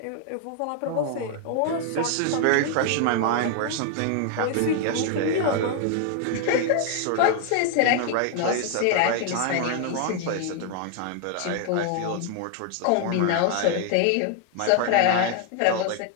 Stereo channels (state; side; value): different; both; correlation 0.00